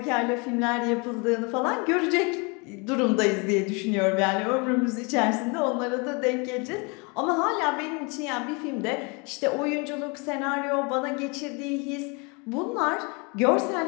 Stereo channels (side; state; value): right; quieter; 31.0 dB